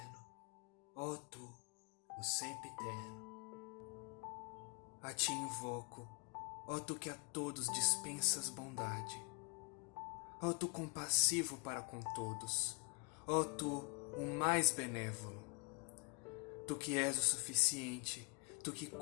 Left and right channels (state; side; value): quieter; right; 31.9 dB